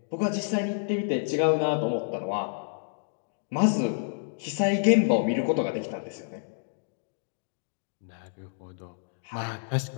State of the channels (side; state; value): right; silent; digital silence